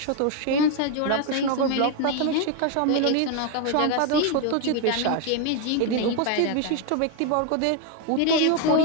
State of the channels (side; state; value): both; different; correlation 0.02